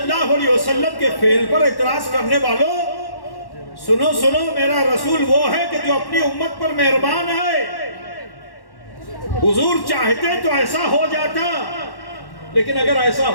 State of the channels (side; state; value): right; late; 1.1 ms